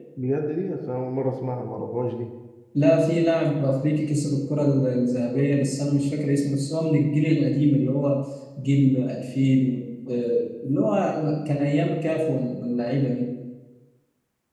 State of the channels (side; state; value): both; identical; correlation 1.00